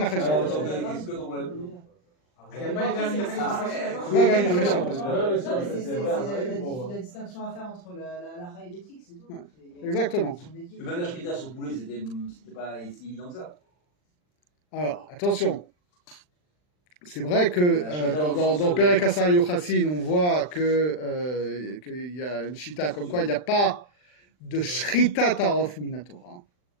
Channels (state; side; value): late; right; 39 ms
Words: Achai sur un poison. Qu'est-ce que ton problème? Il n'y a pas de vermin Achai pas vermin Achai sur un poison. C'est la distinction à faire entre la et l'éthique, c'est tout. Exactement. Même la shrita sur poulet, c'était pas si évident que ça. Alors, attention. C'est vrai que dans Perek Asar Yochassin, on voit qu'il y a une shita comme quoi il n'y a pas de shrita tarof minatora.